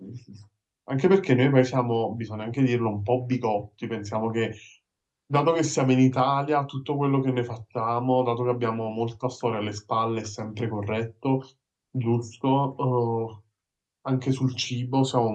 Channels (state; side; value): identical; both; correlation 1.00